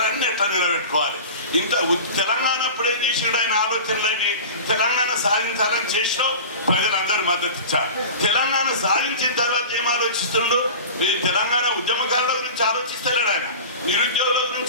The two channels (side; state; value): both; inverted; correlation -0.34